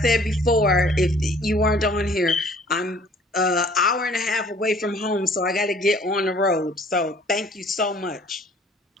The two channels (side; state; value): both; normal; correlation 0.55